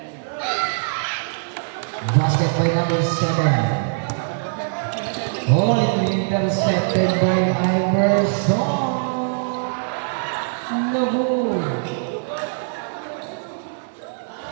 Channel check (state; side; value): silent; left; digital silence